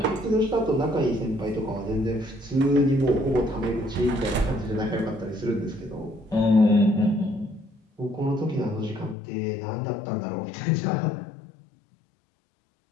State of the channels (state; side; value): drops out; right; at 9.2 s